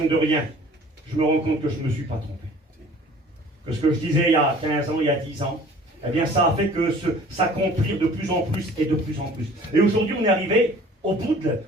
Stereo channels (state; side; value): normal; both; correlation 0.49